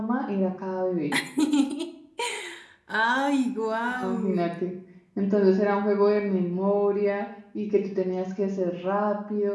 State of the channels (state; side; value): identical; both; correlation 1.00